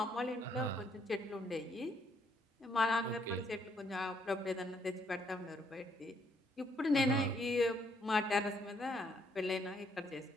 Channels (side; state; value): both; normal; correlation 0.70